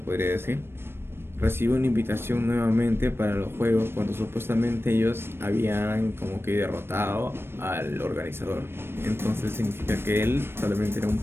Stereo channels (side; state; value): left; late; 0.12 ms